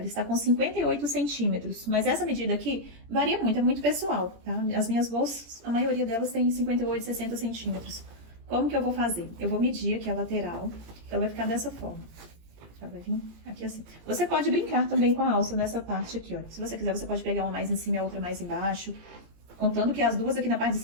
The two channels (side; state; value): left; late; 17 ms